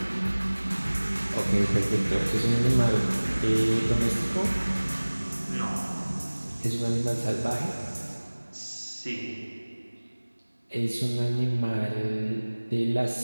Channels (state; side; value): inverted; both; correlation -1.00